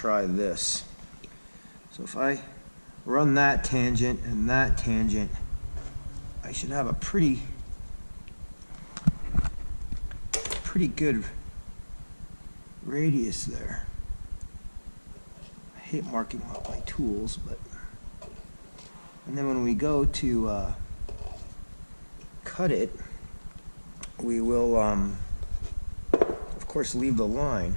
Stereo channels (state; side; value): inverted; both; correlation -1.00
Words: this. So if I run that tangent and that tangent, I should have a pretty good radius there. I hate marking out my tools, but... And then when we go to cut it, we will, of course, leave the